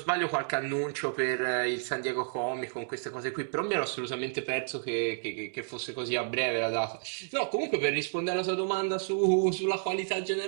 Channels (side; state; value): left; silent; digital silence